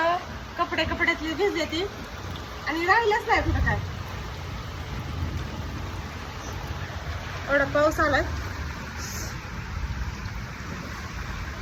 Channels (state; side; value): identical; both; correlation 1.00